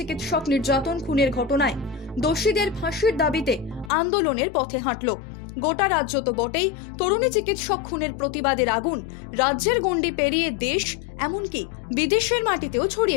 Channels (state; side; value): drops out; right; at 3.9 s